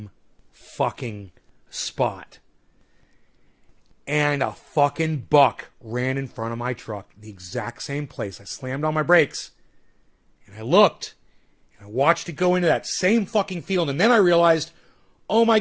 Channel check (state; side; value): identical; both; correlation 1.00